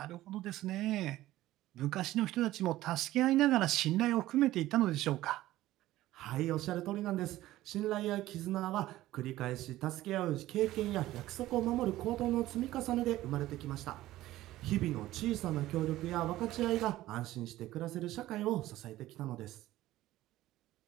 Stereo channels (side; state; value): left; quieter; 15.6 dB